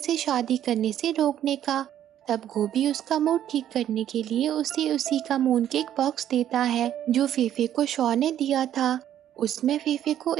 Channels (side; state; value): left; quieter; 11.0 dB